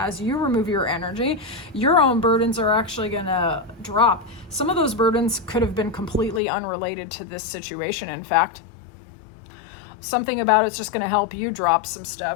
you remove your energy, your own burdens are actually going to drop. Some of those burdens could have been completely unrelated to this situation. In fact, something about it's just going to help you drop some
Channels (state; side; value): drops out; right; at 6.4 s